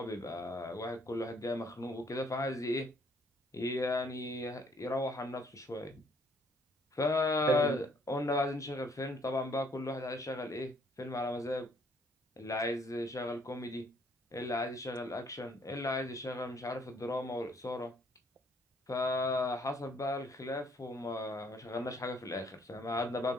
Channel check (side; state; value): both; normal; correlation 0.64